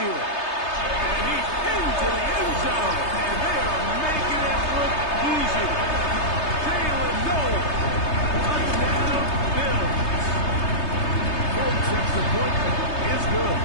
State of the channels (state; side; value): late; right; 3.3 ms